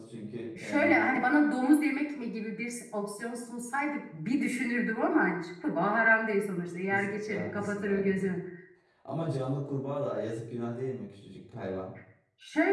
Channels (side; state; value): both; identical; correlation 1.00